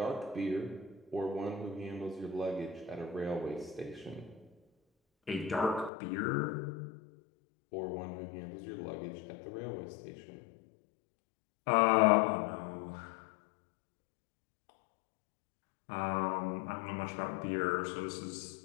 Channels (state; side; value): drops out; right; at 5.9 s